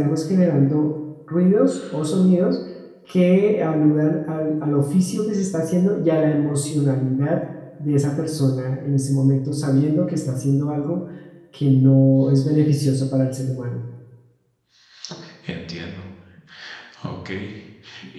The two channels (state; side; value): identical; both; correlation 1.00